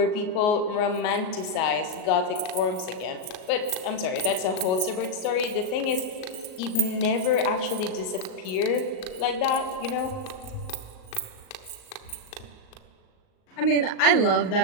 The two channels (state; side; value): late; right; 38 ms